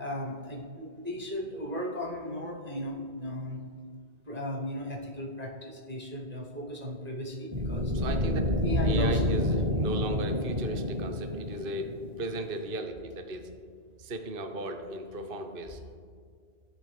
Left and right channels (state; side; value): late; left; 2.5 ms